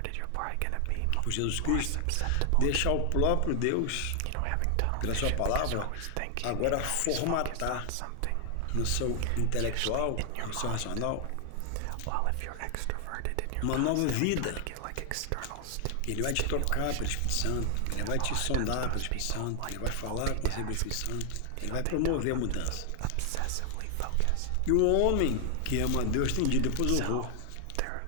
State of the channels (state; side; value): different; both; correlation 0.00